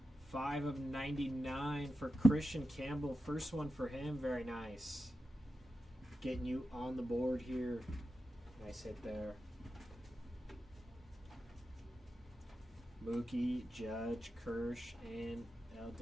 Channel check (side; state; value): both; normal; correlation 0.90